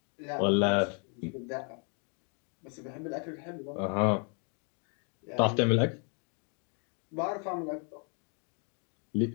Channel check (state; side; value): quieter; right; 39.9 dB